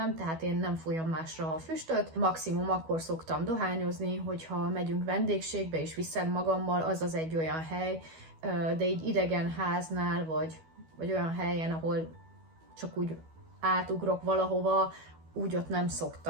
tehát én nem fújom másra a füstöt. Maximum akkor szoktam dohányozni, hogyha megyünk vendégségbe és viszem magammal, az egy olyan hely, de így idegen háznál, vagy olyan helyen, ahol csak úgy átugrok valahova, úgy ott nem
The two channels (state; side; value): late; left; 12 ms